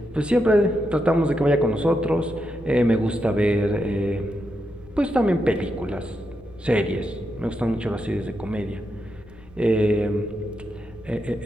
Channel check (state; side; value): noise; left; rumble, 23 dB below the sound